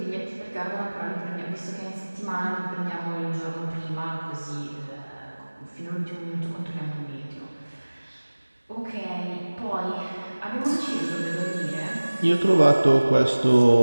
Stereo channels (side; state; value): both; inverted; correlation -1.00